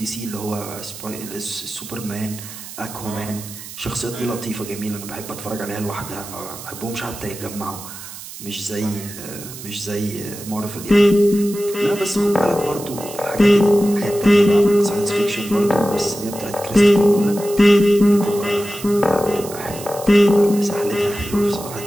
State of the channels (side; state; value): right; noise; hiss, 13 dB below the sound